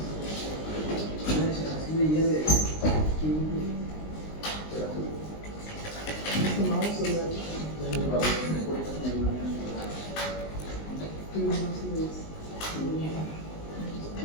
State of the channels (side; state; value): right; late; 19 ms